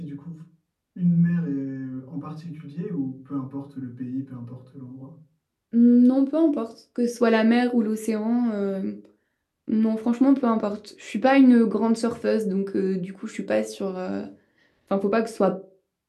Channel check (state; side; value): identical; both; correlation 1.00